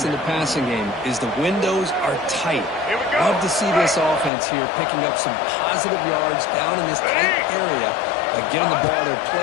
in the passing game is the windows are tight. Love to see this offense here picking up some positive yards down in this tight area by getting the ball to their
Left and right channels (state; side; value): drops out; right; at 4.3 s